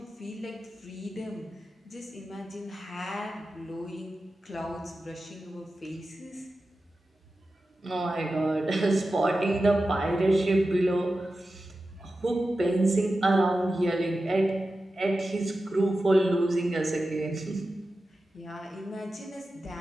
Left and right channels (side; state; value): both; normal; correlation 0.93